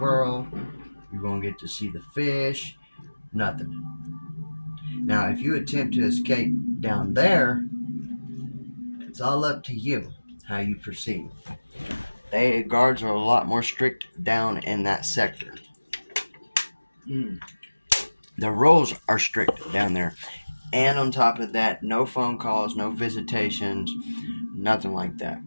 You won't get to see the fish. Nothing. Now, if you attempt to escape down there, it's all up to you how you proceed. The guards are a lot more strict down in that sector. The rules are strict down there. And on top of that, no phone calls, no visitations, nothing like that.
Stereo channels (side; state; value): both; inverted; correlation -1.00